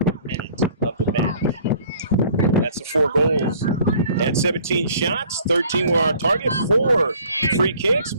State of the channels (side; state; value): both; inverted; correlation -0.54